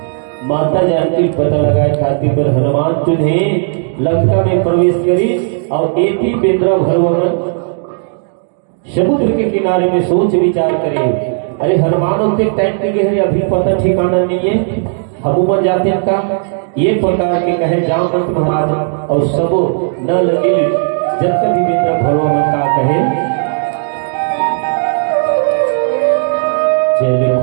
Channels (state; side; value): silent; left; digital silence